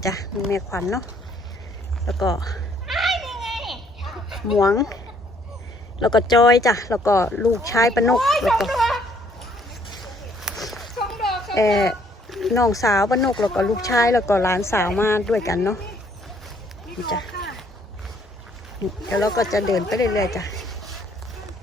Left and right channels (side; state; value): both; normal; correlation 0.65